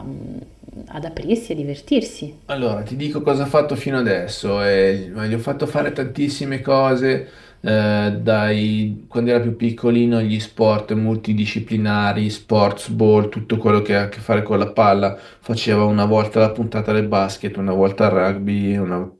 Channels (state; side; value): identical; both; correlation 1.00